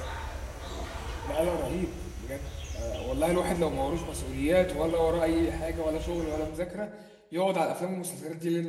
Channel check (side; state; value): both; identical; correlation 1.00